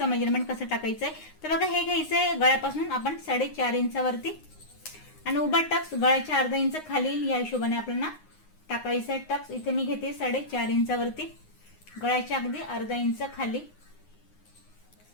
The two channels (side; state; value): right; late; 9.6 ms